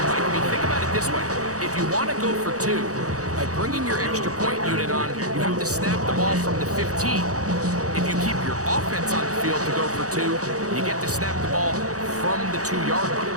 Mike. I mean, think about it this way. If you want to go for 2, by bringing your extra point unit on, you have to snap the ball from the 15. If you keep your offense on the field to go for 2, you get to snap the ball from the 2-yard line.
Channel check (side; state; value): left; late; 0.66 ms